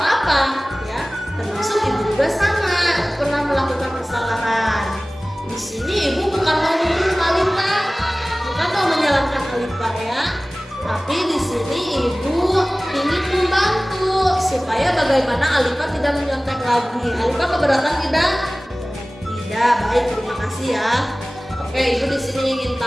ya. Termasuk ibu juga sama pernah melakukan kesalahan. Di sini ibu bukan mau menyalahkan Alifa, bukan mau menyalahkan Alifa ya. Tapi di sini ibu ingin membantu supaya bagaimana Alifa tidak menyontek lagi. Alifa keberatan tidak? Tidak, baik, terima kasih ya. Oke, ibu di sini ingin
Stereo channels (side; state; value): both; normal; correlation 0.98